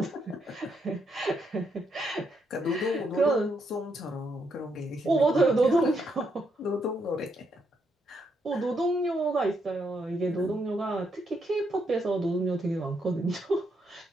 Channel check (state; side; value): normal; both; correlation 0.78